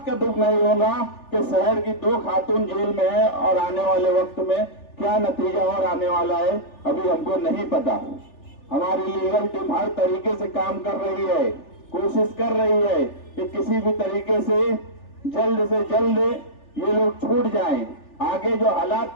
का दुख नहीं होगा कि शहर की 2 खातून जेल में है और आने वाले वक्त में क्या नतीजा और आने वाला है अभी हमको नहीं पता। हमारी लीगल टीम हर तरीके से काम कर रही है, कोशिश कर रही है कि किसी भी तरीके से जल्द ये लोग छूट जाएं। आगे जो हालात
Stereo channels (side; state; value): right; late; 3.4 ms